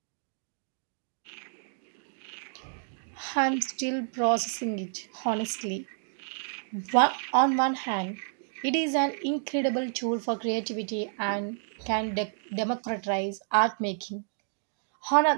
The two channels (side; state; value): left; silent; digital silence